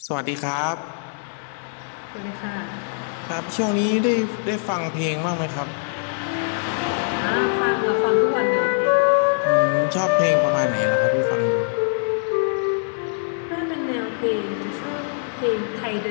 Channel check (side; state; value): right; silent; digital silence